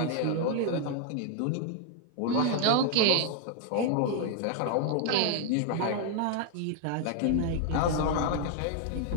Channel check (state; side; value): different; both; correlation 0.00